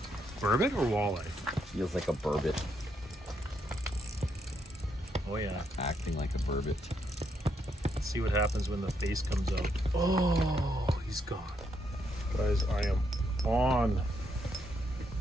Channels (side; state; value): both; normal; correlation 0.77